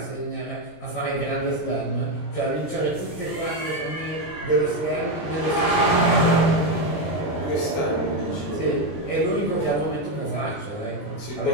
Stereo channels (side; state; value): right; late; 19 ms